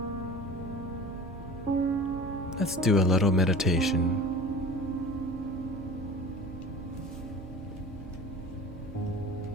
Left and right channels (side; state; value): both; normal; correlation 0.37